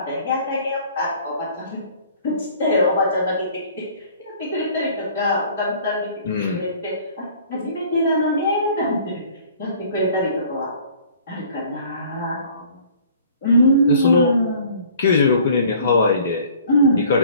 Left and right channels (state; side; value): inverted; both; correlation -0.52